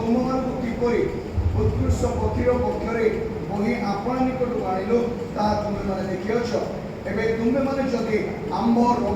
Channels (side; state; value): both; identical; correlation 1.00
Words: କିପରି ଉତ୍କୃଷ୍ଟ ପକ୍ଷୀର ପକ୍ଷରେ ବହି ଆପଣା ନିକଟକୁ ଆଣିଲୁ ତାହା ତୁମେମାନେ ଦେଖିଅଛ। ଏବେ ତୁମେମାନେ ଯଦି ଆମ୍ଭ